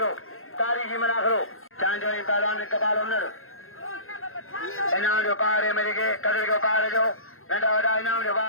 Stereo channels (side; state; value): right; late; 0.61 ms